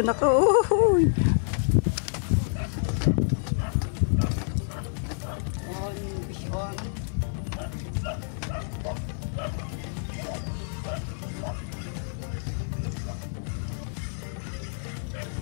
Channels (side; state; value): right; silent; digital silence